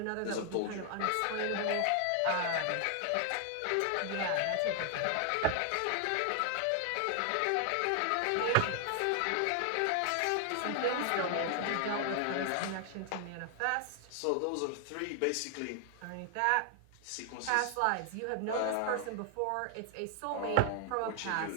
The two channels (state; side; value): different; both; correlation 0.00